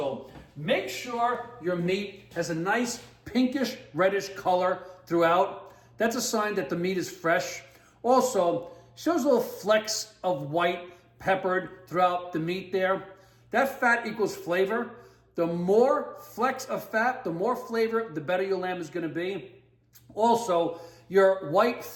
make sure your meat has a nice pinkish reddish color throughout. That's a sign that the meat is fresh. Also, shows little flecks of white peppered throughout the meat there. That fat equals flavor. The more flecks of fat, the more flavor, the better your lamb is going to be. Also, your white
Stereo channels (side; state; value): both; identical; correlation 1.00